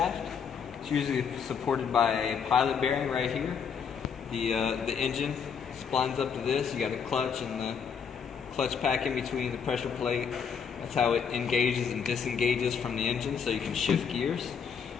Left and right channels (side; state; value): right; quieter; 6.8 dB